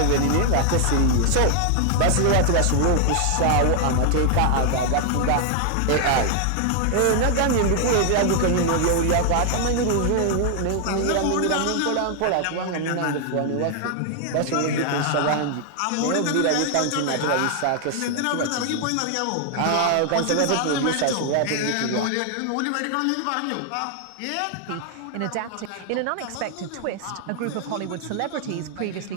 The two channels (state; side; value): different; both; correlation 0.00